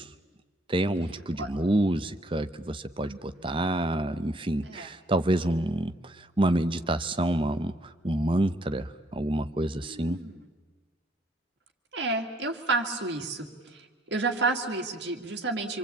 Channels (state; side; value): normal; both; correlation 0.65